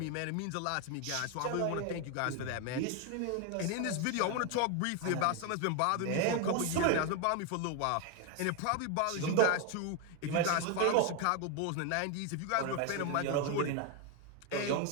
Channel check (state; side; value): different; both; correlation 0.01